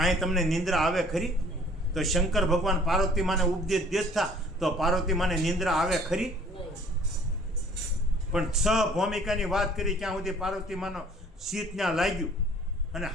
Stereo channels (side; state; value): both; normal; correlation 0.55